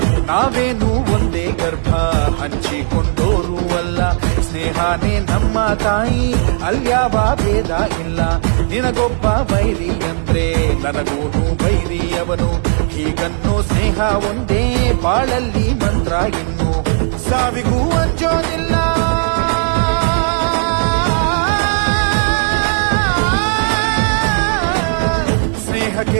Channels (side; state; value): left; silent; digital silence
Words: ನಾವೇನು ಒಂದೇ ಗರ್ಭ ಹಂಚಿಕೊಂಡೋರು ಅಲ್ಲ, ಸ್ನೇಹನೇ ನಮ್ಮ ತಾಯಿ ಅಲ್ಯಾವ ಭೇದ ಇಲ್ಲ. ನಿನಗೊಬ್ಬ ಬೈರಿ ಅಂದ್ರೆ ನನಗೂನು ಬೈರಿ ಅವನು, ಹೀಗನ್ನೋ ಸ್ನೇಹ ಒಂದೇ ಬಾಳಲ್ಲಿ ಮಂತ್ರ. ಇನ್ನು ಸಾವಿಗೂ ಅಂಜೋದಿಲ್ಲ,